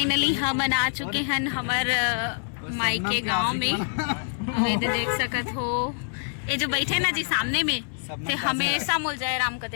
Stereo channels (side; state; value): right; silent; 61 dB below the other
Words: हम आ चुके हैं हमार मायके गांव में। ये देख सकत हो ये जो बैठे ना जी सामने में ते हमेशा मोल जयराम कहते